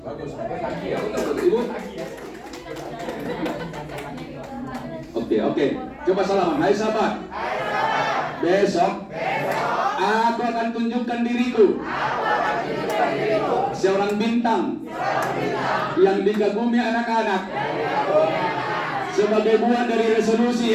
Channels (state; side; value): identical; both; correlation 1.00